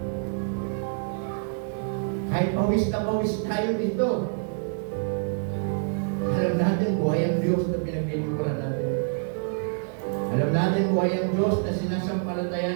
Kahit pawis na pawis tayo dito. Alam natin buhay ang Diyos na pinaglilingkuran natin. Alam natin buhay ang Diyos na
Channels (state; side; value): silent; left; digital silence